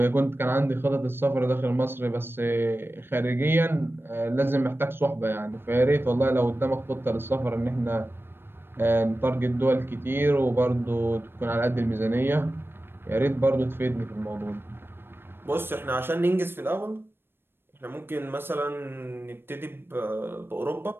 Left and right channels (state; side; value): late; left; 0.10 ms